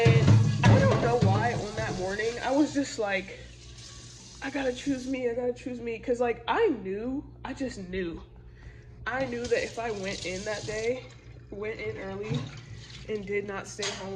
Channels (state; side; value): identical; both; correlation 1.00